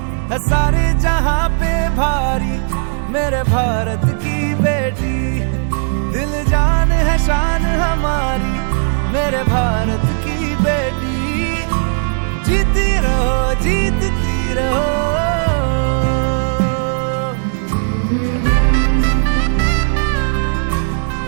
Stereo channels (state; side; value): silent; left; digital silence